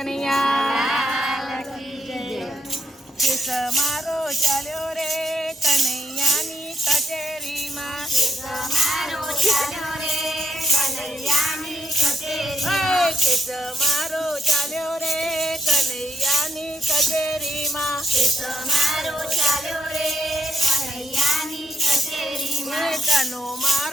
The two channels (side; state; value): both; normal; correlation 0.78